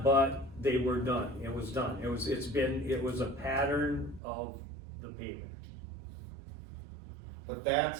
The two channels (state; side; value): drops out; left; at 4.2 s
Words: but they were done, it was done, it was a pattern of the payment. But